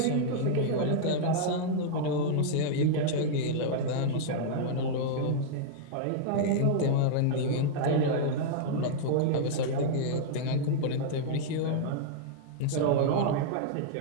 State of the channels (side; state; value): both; different; correlation -0.01